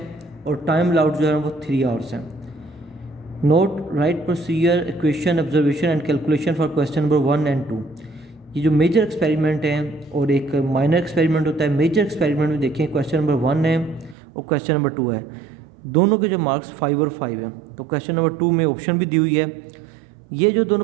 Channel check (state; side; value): drops out; left; at 14.2 s